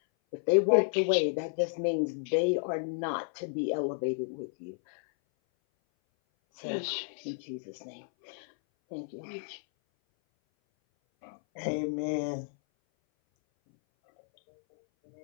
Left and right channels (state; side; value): silent; right; 57 dB below the other